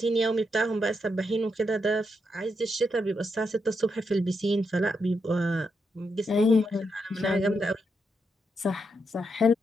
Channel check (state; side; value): normal; both; correlation 0.82